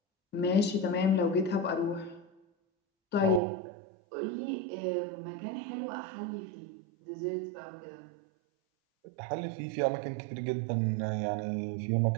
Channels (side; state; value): left; drops out; at 3.4 s